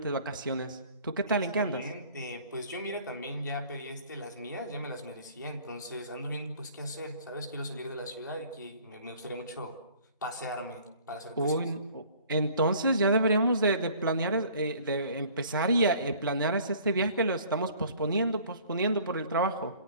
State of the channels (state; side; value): inverted; both; correlation -0.53